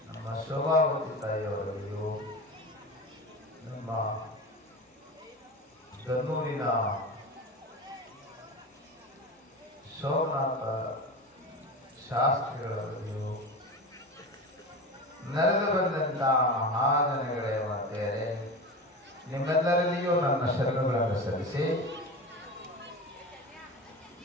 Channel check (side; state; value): both; normal; correlation 0.28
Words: ನಮ್ಮ ಶೋಭಾವತಿ ತಾಯಿಯವರಲ್ಲಿಯೂ ನಮ್ಮ ಗನ್ನೂರಿನ ಸೋಮನಾಥ ಶಾಸ್ತ್ರಿಗಳಲ್ಲಿಯೂ ನಡೆದು ಬಂದಂಥ ಮಹಾಜನಗಳೇ ಮಾತೆಯರೇ, ನಿಮ್ಮೆಲ್ಲರಲ್ಲಿಯೂ ನನ್ನ ಶರಣಗಳನ್ನು ಸಲ್ಲಿಸಿ